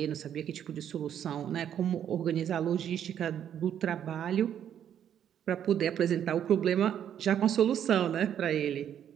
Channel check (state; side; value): quieter; left; 9.6 dB